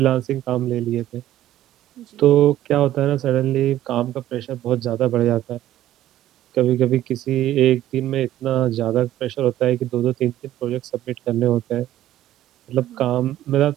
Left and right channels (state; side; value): quieter; left; 13.3 dB